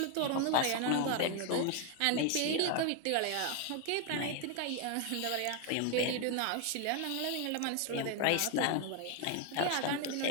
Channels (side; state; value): both; different; correlation 0.01